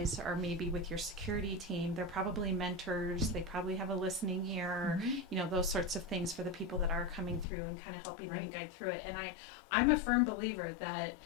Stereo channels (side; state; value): right; drops out; at 7.5 s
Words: are maybe with your security team, they're probably mentors, they probably have a listening ear, those sorts of things for the people that are coming through and kind of helping them guide through it. And I'm a firm believer that